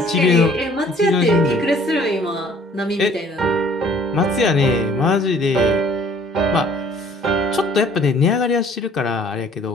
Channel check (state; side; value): normal; both; correlation 0.56